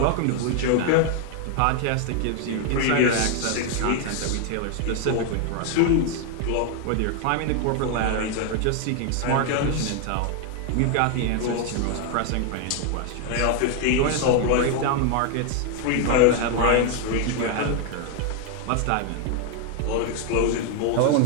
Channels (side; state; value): both; different; correlation 0.00